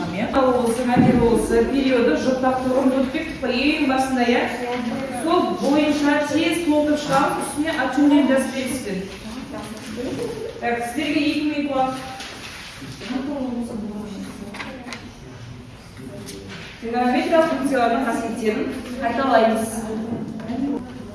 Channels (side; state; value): both; identical; correlation 1.00